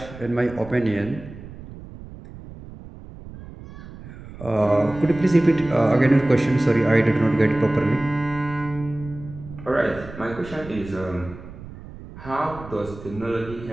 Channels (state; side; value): noise; right; rumble, 15 dB below the sound